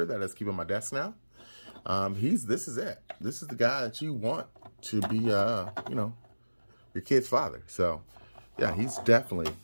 that is keeping my desk now. This is it. This is the guy that you want to be, your kid's father. So, yeah, he's definitely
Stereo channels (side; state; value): both; inverted; correlation -1.00